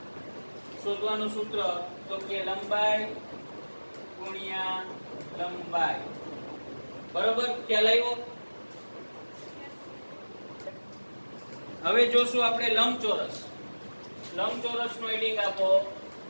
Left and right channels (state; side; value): inverted; both; correlation -1.00